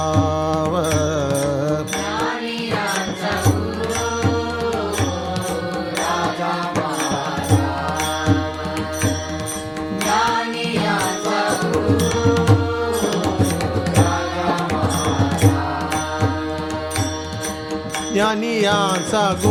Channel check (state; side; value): identical; both; correlation 1.00